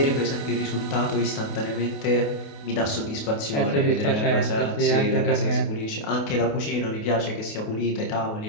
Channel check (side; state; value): right; late; 28 ms